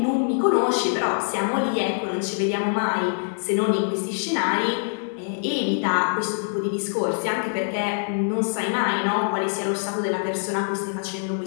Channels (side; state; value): right; silent; digital silence